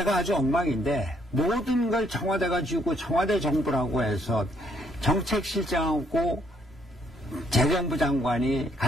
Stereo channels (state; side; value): normal; both; correlation 0.70